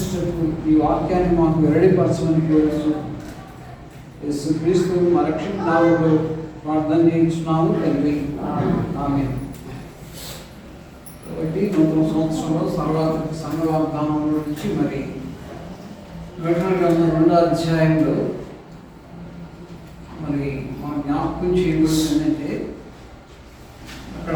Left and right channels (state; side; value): identical; both; correlation 1.00